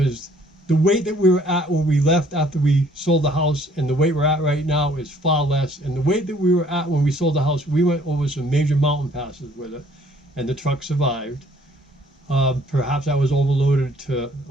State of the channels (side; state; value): both; normal; correlation 0.60